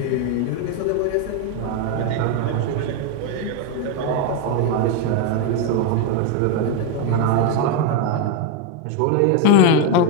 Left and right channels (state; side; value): different; both; correlation 0.02